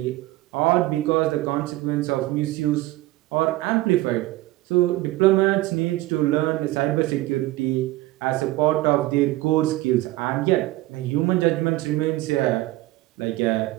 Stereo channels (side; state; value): left; quieter; 17.9 dB